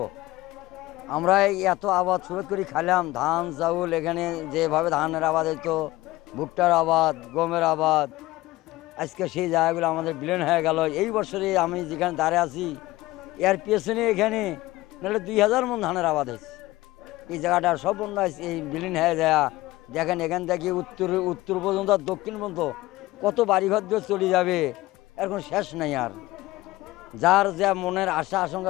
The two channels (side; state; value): right; quieter; 18.3 dB